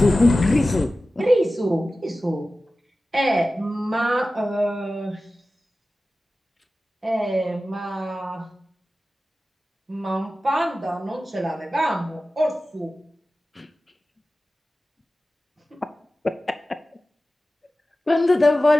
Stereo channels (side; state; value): both; normal; correlation 0.95